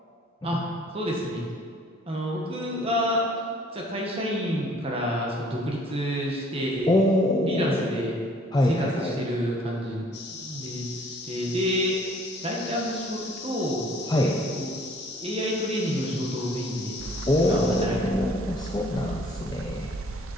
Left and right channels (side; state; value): both; normal; correlation 0.57